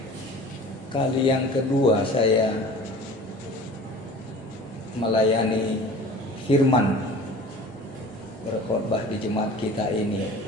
kali yang kedua saya melayani firman, berkhotbah di jemaat kita ini.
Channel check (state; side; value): normal; both; correlation 0.42